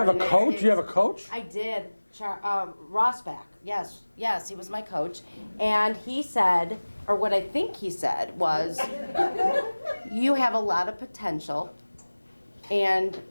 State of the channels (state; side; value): inverted; both; correlation -1.00